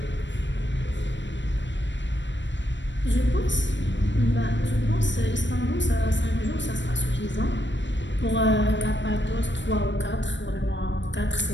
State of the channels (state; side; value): late; right; 0.53 ms